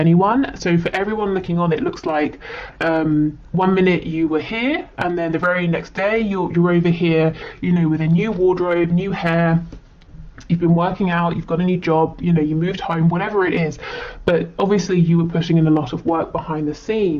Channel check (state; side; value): identical; both; correlation 1.00